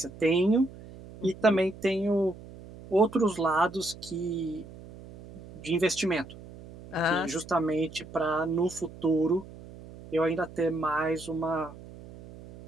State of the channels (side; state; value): right; noise; hum, 17 dB below the sound